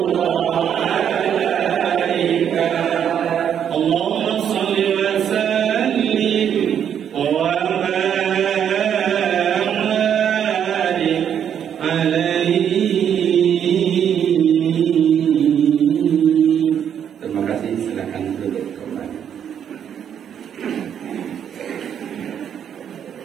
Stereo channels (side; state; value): left; quieter; 8.8 dB